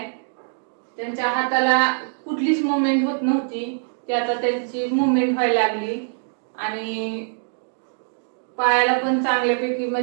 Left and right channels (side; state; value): left; silent; digital silence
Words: त्यांच्या हाताला कुठलीच मुवमेंट होत नव्हती, ती आता त्यांची मुवमेंट व्हायला लागली. आणि पायाला पण चांगल्यापैकी